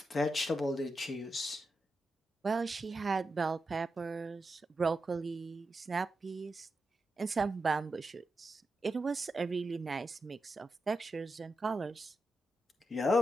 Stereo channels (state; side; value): normal; both; correlation 0.88